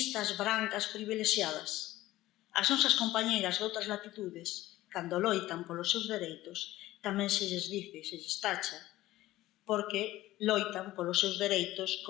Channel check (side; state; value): right; quieter; 16.2 dB